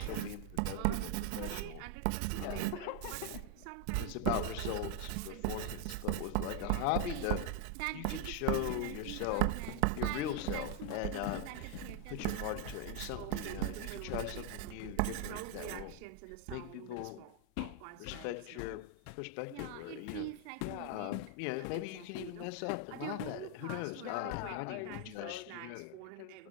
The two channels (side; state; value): both; different; correlation 0.00